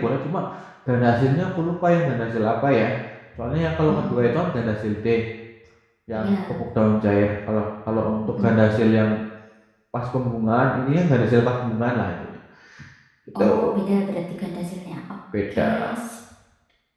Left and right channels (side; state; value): both; identical; correlation 1.00